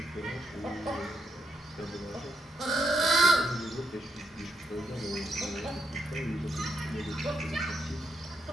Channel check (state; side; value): normal; both; correlation 0.79